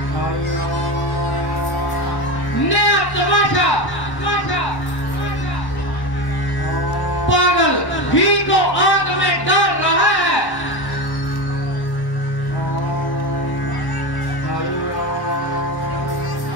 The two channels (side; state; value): right; late; 1.1 ms